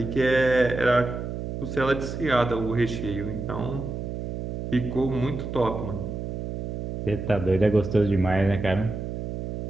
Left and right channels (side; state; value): right; noise; hum, 5 dB below the sound